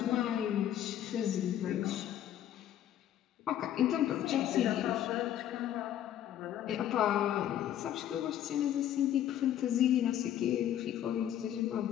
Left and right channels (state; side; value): quieter; right; 11.2 dB